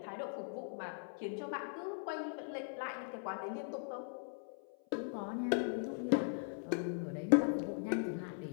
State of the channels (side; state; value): right; silent; 51 dB below the other